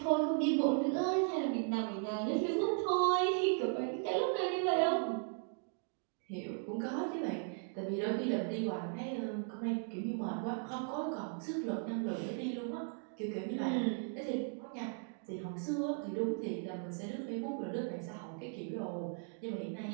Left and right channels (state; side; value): silent; left; 53 dB below the other